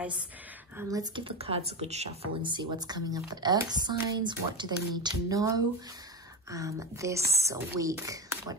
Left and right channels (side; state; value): both; normal; correlation 0.18